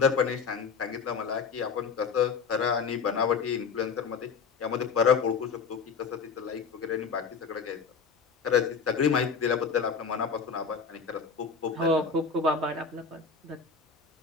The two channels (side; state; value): right; quieter; 5.5 dB